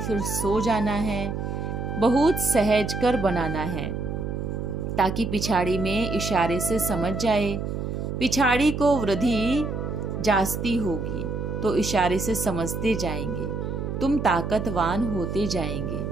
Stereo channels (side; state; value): right; noise; hum, 4 dB below the sound